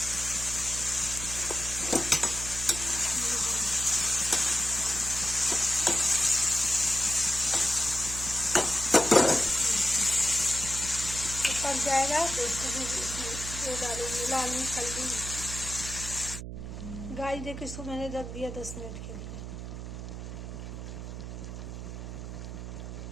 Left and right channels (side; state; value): right; noise; hum, 8 dB below the sound